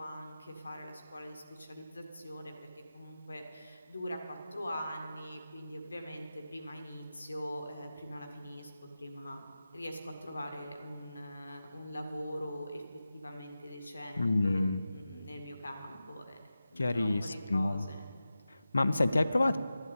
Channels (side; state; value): both; inverted; correlation -0.93